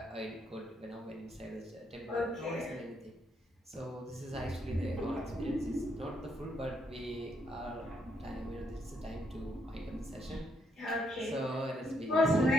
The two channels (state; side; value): normal; both; correlation 0.75